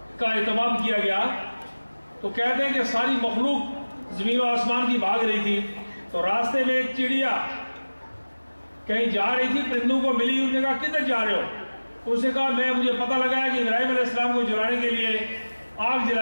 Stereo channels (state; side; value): inverted; both; correlation -1.00